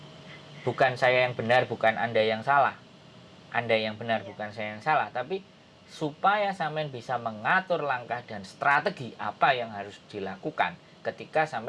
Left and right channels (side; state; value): both; identical; correlation 1.00